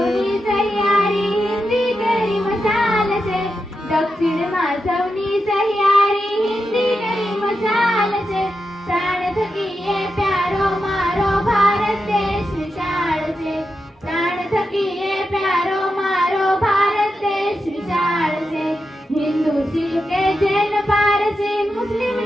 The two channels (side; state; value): both; normal; correlation 0.88